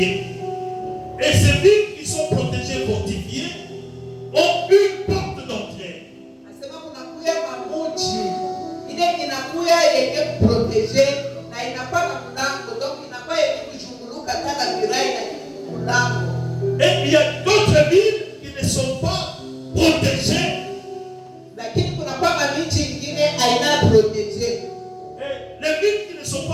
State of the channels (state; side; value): identical; both; correlation 1.00